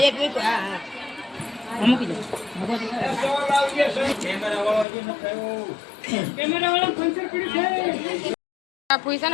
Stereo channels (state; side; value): drops out; right; at 4.9 s